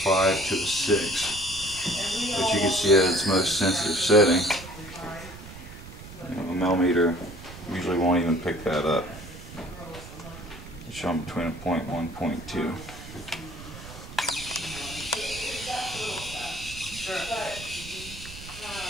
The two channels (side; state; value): right; noise; rumble, 14 dB below the sound